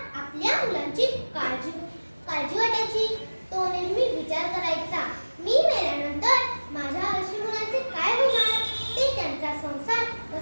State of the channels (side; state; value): both; inverted; correlation -1.00